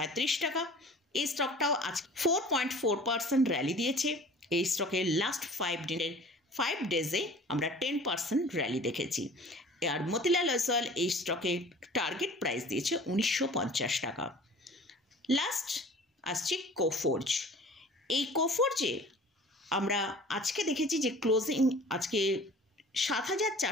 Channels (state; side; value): normal; both; correlation 0.45